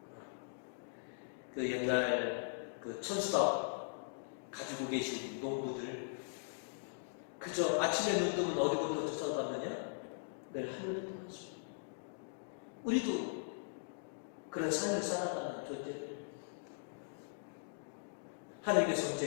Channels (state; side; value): silent; right; digital silence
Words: 그 옛날 그 천수답 가지고 계신 농부들 그저 아침에 눈 뜨면 어디부터 쫓아갔느냐? 내일 하늘을 떠났습니다. 우리도 그런 삶을 살아가는 존재들. 하나님께서